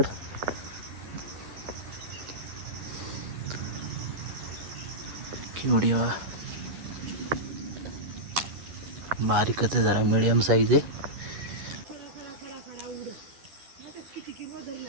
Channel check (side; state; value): left; late; 11 ms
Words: केवढी बघा, बारीकच आहे जरा, मिडियम साईज आहे.